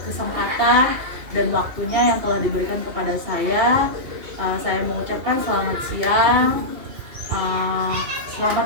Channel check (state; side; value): late; left; 2.8 ms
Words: kesempatan dan waktunya yang telah diberikan kepada saya. Saya mengucapkan selamat siang.